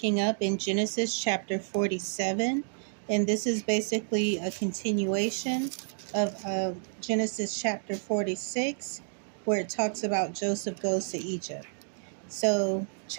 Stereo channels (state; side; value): silent; left; 58 dB below the other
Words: up in Genesis chapter 47. And this is basically a continuation of Genesis chapter 46, where it talks about Joseph goes to Egypt. So,